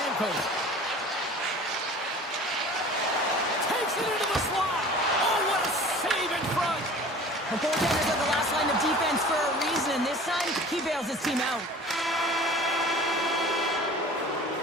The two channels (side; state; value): both; normal; correlation 0.43